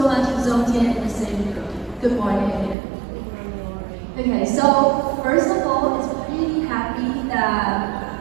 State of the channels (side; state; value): left; drops out; at 2.8 s